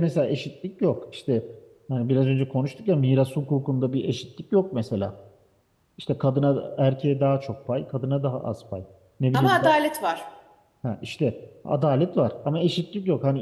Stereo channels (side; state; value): both; identical; correlation 1.00